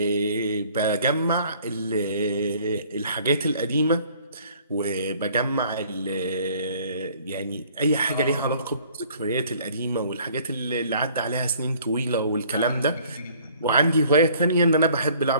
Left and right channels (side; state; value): both; inverted; correlation -0.56